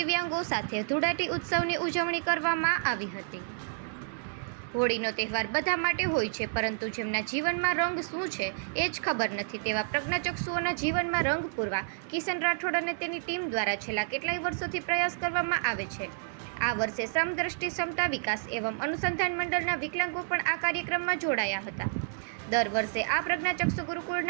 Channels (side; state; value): left; silent; digital silence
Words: સાથે ધૂળેટી ઉત્સવની ઉજવણી કરવામાં આવી હતી. હોળીનો તહેવાર બધા માટે હોય છે, પરંતુ જેમના જીવનમાં રંગ શું છે એ જ ખબર નથી તેવા પ્રજ્ઞાચક્ષુઓના જીવનમાં રંગ પૂરવા કિશન રાઠોડ અને તેની ટીમ દ્વારા છેલ્લા કેટલાય વર્ષોથી પ્રયાસ કરવામાં આવે છે. આ વર્ષે સમદ્રષ્ટિ સમતા વિકાસ એવં અનુસંધાન મંડળના વિકલાંગો પણ આ કાર્યક્રમમાં જોડાયા હતા. દર વર્ષે આ પ્રજ્ઞાચક્ષુ